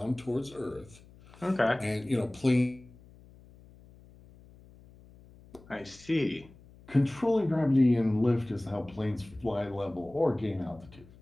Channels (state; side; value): noise; left; hum, 23 dB below the sound